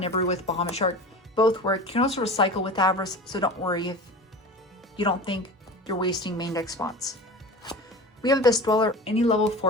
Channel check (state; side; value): normal; both; correlation 0.34